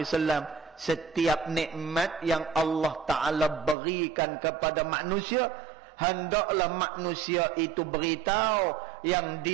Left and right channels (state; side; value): drops out; left; at 3.8 s